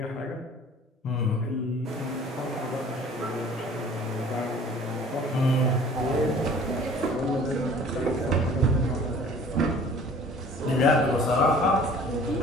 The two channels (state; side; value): normal; both; correlation 0.49